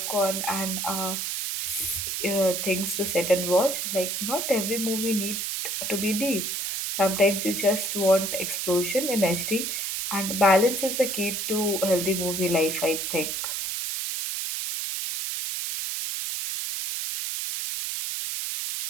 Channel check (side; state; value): right; noise; hiss, 2 dB below the sound